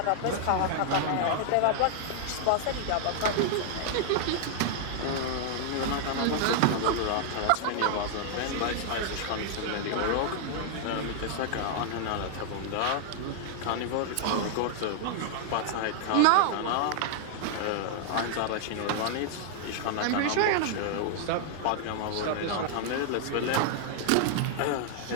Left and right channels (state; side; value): different; both; correlation -0.01